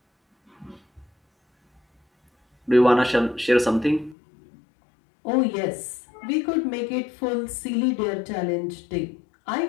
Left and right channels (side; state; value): right; drops out; at 4.2 s